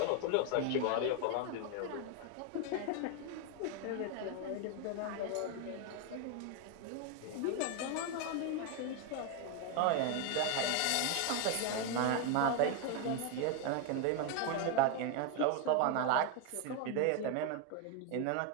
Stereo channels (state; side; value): different; both; correlation 0.01